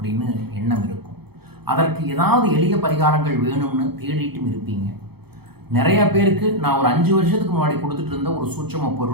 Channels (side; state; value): left; late; 0.97 ms